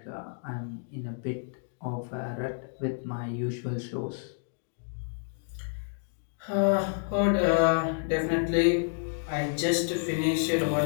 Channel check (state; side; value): silent; right; digital silence